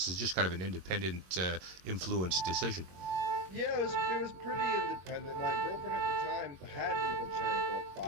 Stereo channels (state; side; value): late; left; 21 ms